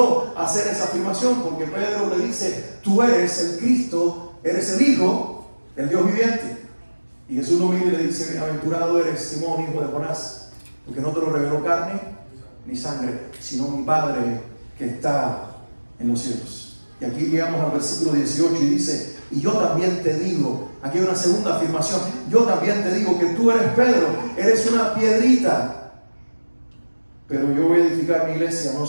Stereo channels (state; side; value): inverted; both; correlation -1.00